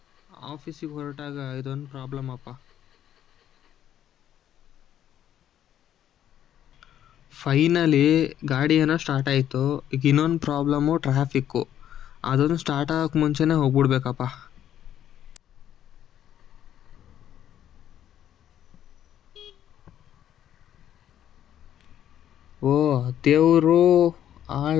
ಆಫೀಸಿಗೆ ಹೊರಟಾಗ ಇದೊಂದು ಪ್ರಾಬ್ಲಮ್ ಅಪ್ಪ. ಫೈನಲಿ ಗಾಡಿ ಏನೋ ಸ್ಟಾರ್ಟ್ ಆಯಿತು. ಈಗ ಇನ್ನೊಂದು ಪ್ರಾಬ್ಲಮ್ಮು ಟ್ರಾಫಿಕ್ಕು. ಅದೊಂದು ಸ್ಟಾರ್ಟ್ ಆಗೋಕ್ಕೆ ಮುಂಚೆನೇ ಹೋಗ್ಬಿಡ್ಬೇಕಪ್ಪ. ಓ ದೇವರು,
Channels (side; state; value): right; quieter; 10.7 dB